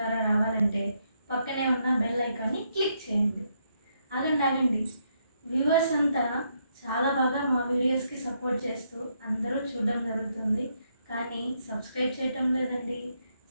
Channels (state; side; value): inverted; both; correlation -0.76